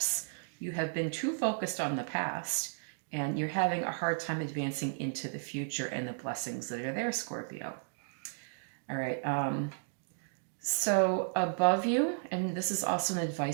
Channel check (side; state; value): left; silent; digital silence